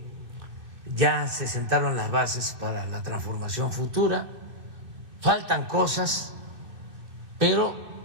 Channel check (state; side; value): late; left; 2.7 ms